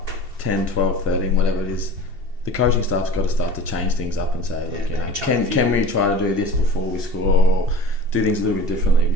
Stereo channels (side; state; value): left; late; 2.7 ms